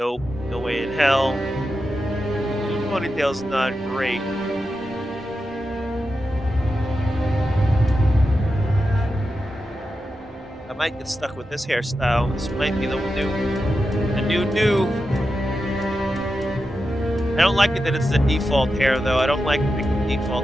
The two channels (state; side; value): normal; both; correlation 0.90